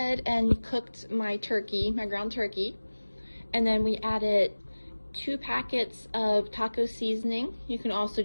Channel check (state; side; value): inverted; both; correlation -1.00